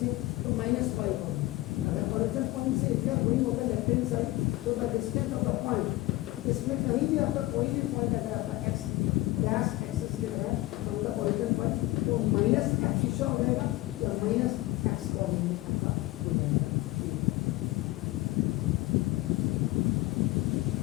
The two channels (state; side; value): quieter; right; 18.7 dB